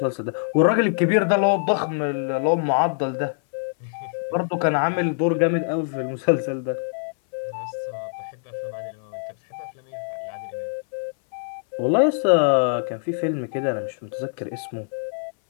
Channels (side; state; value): right; silent; 59 dB below the other